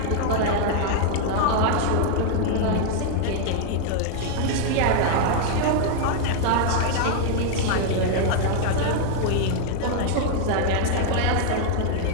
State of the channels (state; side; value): different; both; correlation 0.00